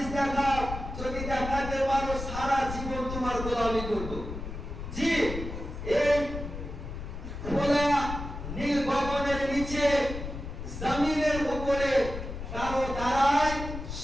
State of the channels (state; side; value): noise; left; rumble, 7 dB below the sound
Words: দেখাও। যদি দেখাতে পারো সারা জীবন তোমার গোলামি করব। জি